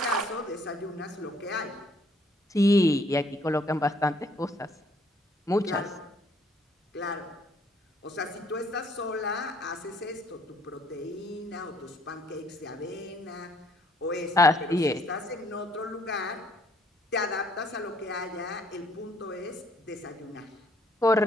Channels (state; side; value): normal; both; correlation 0.64